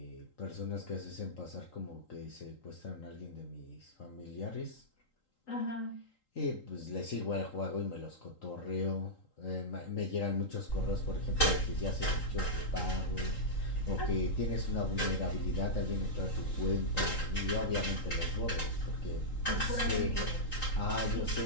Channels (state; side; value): late; right; 3.8 ms